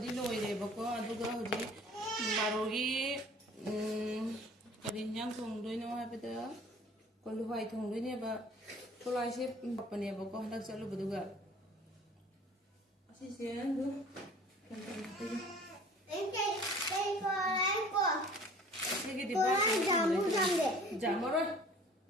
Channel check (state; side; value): normal; both; correlation 0.48